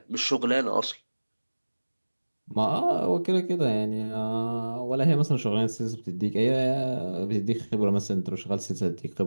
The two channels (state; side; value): inverted; both; correlation -1.00